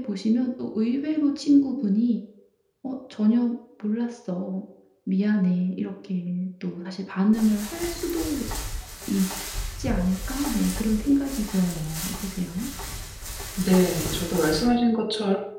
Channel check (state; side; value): identical; both; correlation 1.00